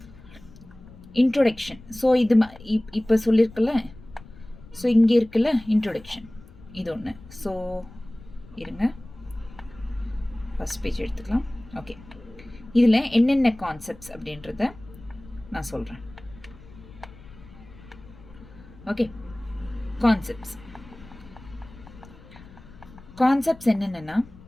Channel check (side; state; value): left; noise; rumble, 20 dB below the sound